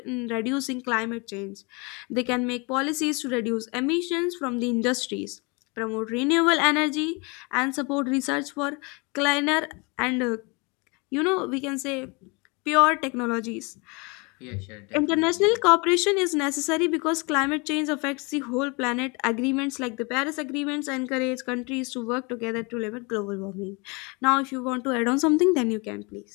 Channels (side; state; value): right; quieter; 29.4 dB